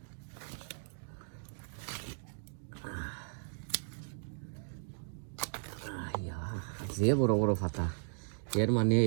যে বড় বড় ফাতা এর মানে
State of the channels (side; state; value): left; silent; digital silence